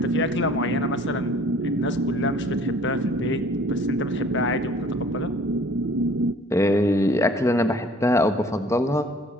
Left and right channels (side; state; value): both; normal; correlation 0.53